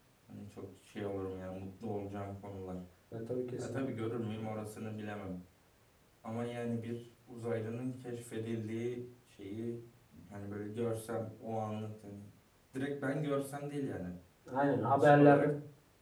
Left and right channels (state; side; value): identical; both; correlation 1.00